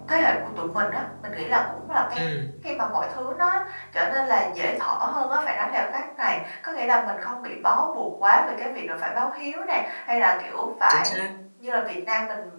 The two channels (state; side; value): inverted; both; correlation -1.00